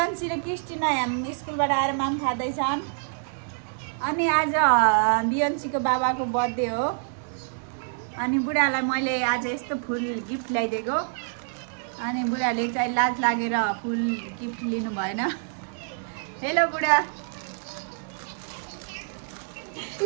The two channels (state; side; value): silent; left; digital silence